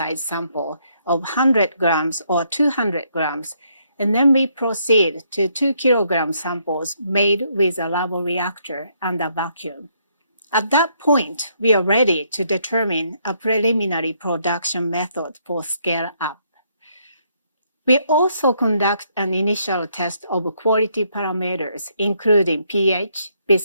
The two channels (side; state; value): both; inverted; correlation -0.72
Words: sample of 100 grams or 200 grams, and then we proceed to 2 kilogram samples made with a labo reactor under vacuum. At that point, we are ready to determine a preliminary production method for scale-up. We also conduct an initial test of quality parameters, including pH,